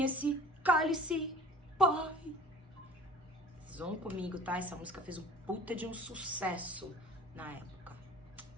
esse cálice, boy. Vocês vão comigo, tá? Essa música fez um puta de um sucesso na época.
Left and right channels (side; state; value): both; normal; correlation 0.44